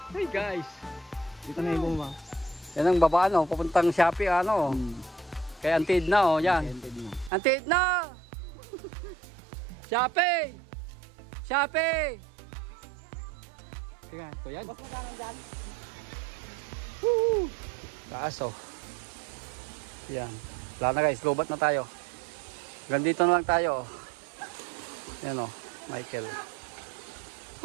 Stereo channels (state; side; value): drops out; left; at 7.3 s